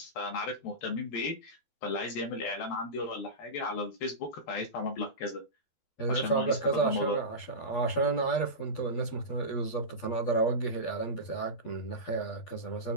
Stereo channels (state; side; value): late; right; 12 ms